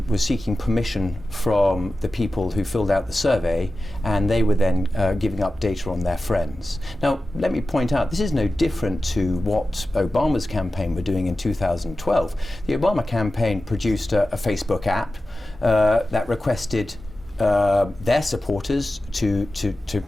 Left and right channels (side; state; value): both; normal; correlation 0.94